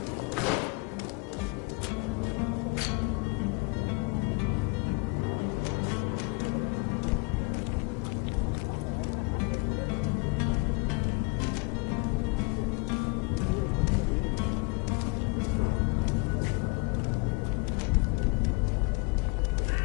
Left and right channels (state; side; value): quieter; right; 28.7 dB